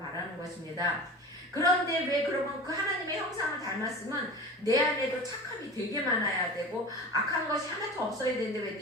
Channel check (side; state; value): both; normal; correlation 0.35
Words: 것입니다. 그런데 왜 그러면 그 하나님의 형상을 닮았으면 내 안에도 착함이 되게 많아야 되고 악한 것이 하나도 없어야 되는데 왜